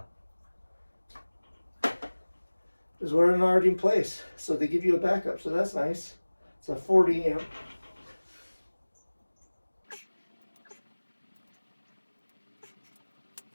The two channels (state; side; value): inverted; both; correlation -1.00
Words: Is we're already in place, so they give you a backup, so that's nice. It's a 40 amp.